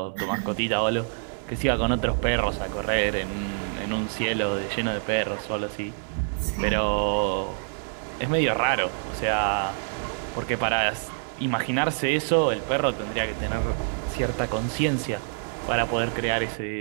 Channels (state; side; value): silent; left; 61 dB below the other